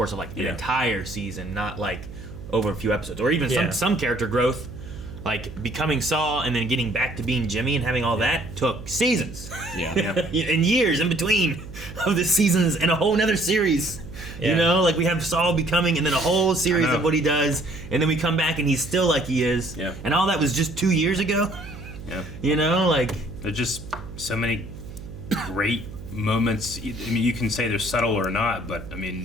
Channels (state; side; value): noise; right; hum, 13 dB below the sound